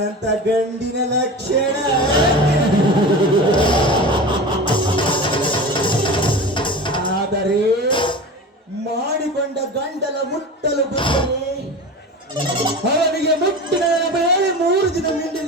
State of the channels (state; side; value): normal; both; correlation 0.31